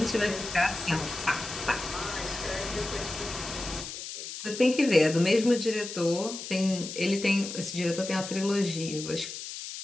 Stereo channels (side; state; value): left; noise; hiss, 9 dB below the sound